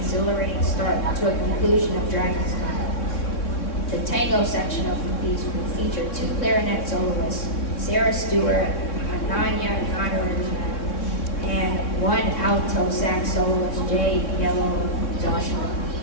start to a conclusion of Dragonstone. The tango section of the piece will feature 2 clarinet soloists, Sarah Stewart, Ananya Nadarajana, and 1 alto sax soloist, Jay Yellow Joshua.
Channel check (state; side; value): late; right; 3.6 ms